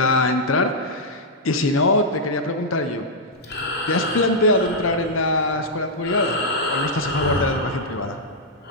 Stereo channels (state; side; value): normal; both; correlation -0.07